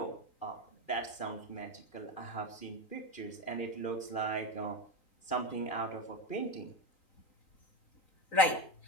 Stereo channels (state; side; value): late; right; 3.9 ms